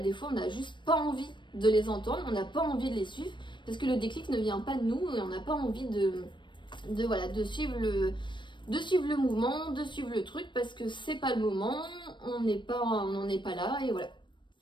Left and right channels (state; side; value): late; right; 0.23 ms